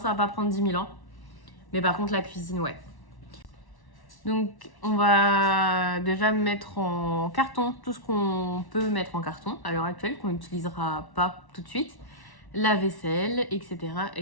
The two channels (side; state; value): right; late; 1.1 ms